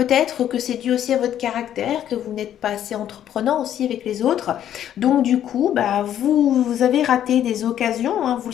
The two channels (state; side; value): quieter; right; 10.7 dB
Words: que c'est dû aussi à votre caractère, que vous n'êtes pas assez entreprenant aussi avec les autres. Donc du coup, bah, vous avez raté des occasions, hein, vous